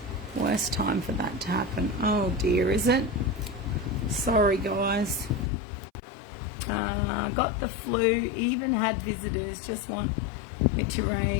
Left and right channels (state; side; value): drops out; right; at 5.5 s